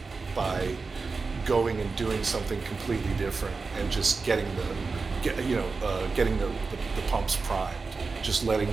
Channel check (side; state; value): left; quieter; 4.3 dB